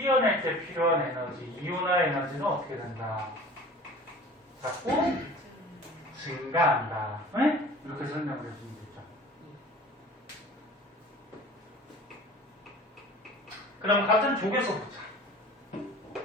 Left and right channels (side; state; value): both; normal; correlation 0.43